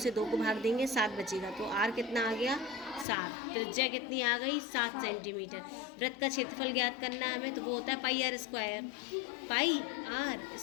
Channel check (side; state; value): right; drops out; at 3.1 s